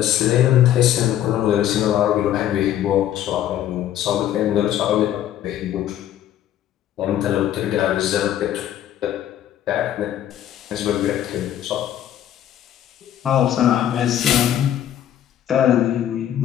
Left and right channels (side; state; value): right; quieter; 11.4 dB